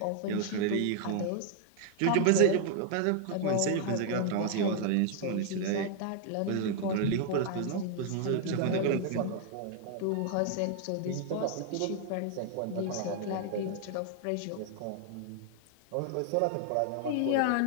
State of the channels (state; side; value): different; both; correlation 0.00